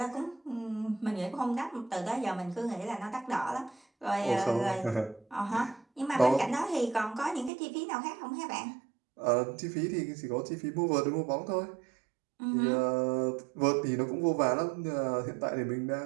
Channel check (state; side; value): drops out; left; at 7.5 s